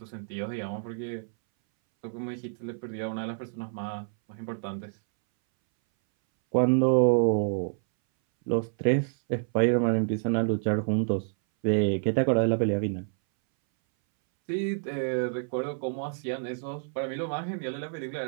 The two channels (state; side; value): silent; left; 59 dB below the other